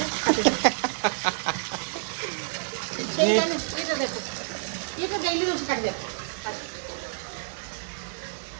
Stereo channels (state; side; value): silent; left; 58 dB below the other